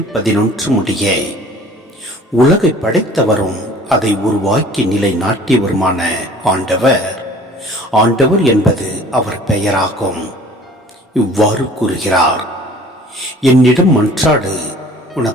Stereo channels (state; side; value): normal; both; correlation 0.49